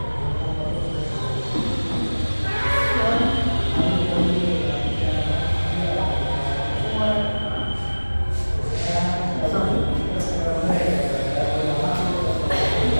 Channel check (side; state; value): both; inverted; correlation -1.00